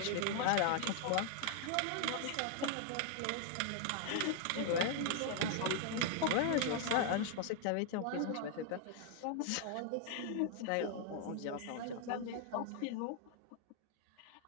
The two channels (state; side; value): different; both; correlation 0.00